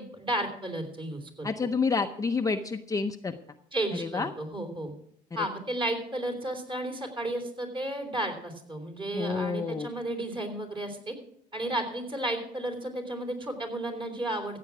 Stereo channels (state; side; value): normal; both; correlation 0.61